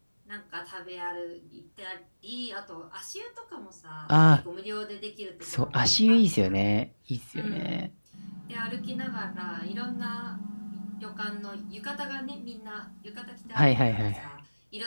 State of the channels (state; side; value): inverted; both; correlation -1.00